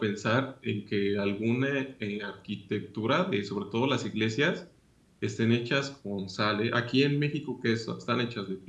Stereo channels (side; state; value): both; identical; correlation 1.00